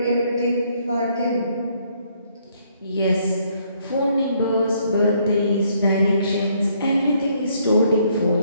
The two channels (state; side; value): inverted; both; correlation -0.68